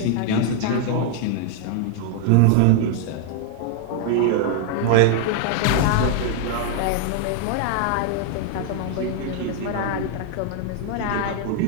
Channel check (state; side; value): different; both; correlation 0.00